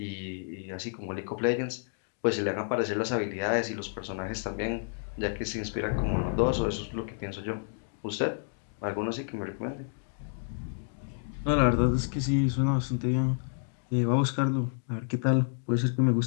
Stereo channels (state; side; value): silent; right; digital silence